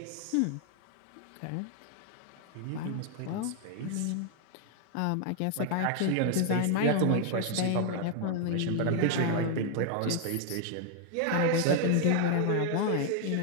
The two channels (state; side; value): different; both; correlation 0.00